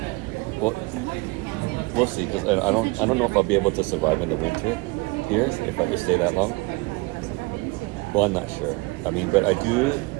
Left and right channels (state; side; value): quieter; left; 25.3 dB